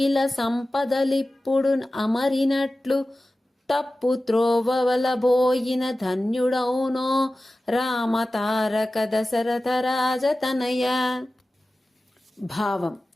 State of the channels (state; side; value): normal; both; correlation 0.95